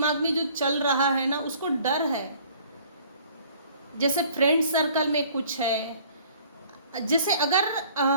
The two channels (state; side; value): inverted; both; correlation -0.54